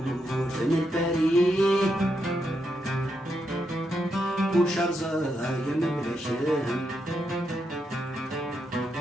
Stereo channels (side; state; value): both; normal; correlation 0.82